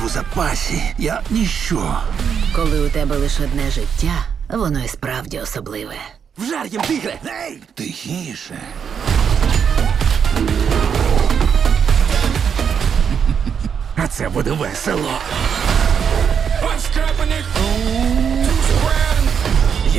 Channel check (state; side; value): quieter; left; 7.2 dB